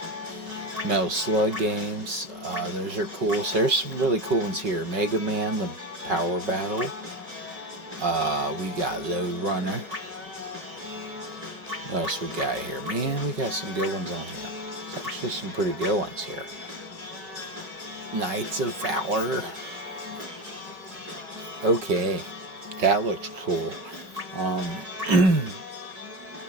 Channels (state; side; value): late; left; 5.4 ms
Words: Metal Slug games. Those are cool. So there's some really cool ones here. Mega Man, the Power Battle. We got Load Runner. What else we got here? Man, we got some good ones on here. There's actually some pretty good ones here. Knights of Valor. Okay, that looks cool.